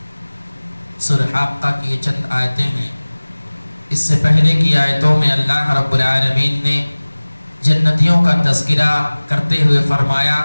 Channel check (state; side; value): inverted; both; correlation -1.00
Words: سورہ حاقہ کی یہ چند آیتیں ہیں. اس سے پہلے کی آیتوں میں اللہ رب العالمین نے جنتیوں کا تذکرہ کرتے ہوئے فرمایا